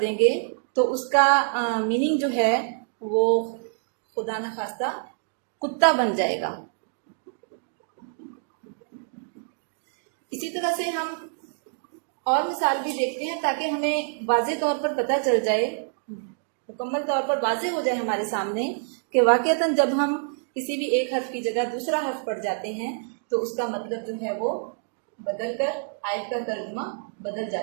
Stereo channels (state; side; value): silent; left; digital silence